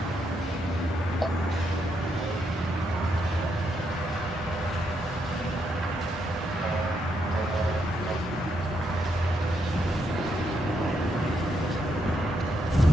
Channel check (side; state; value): both; normal; correlation 0.78